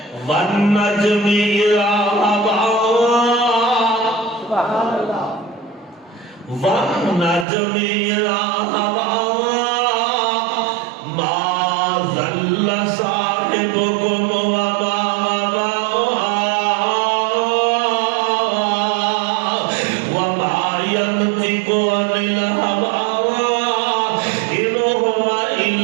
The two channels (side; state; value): left; drops out; at 7.5 s